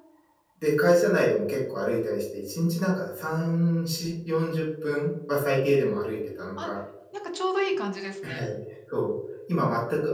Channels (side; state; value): both; identical; correlation 1.00